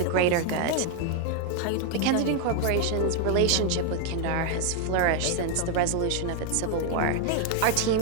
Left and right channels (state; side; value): different; both; correlation 0.01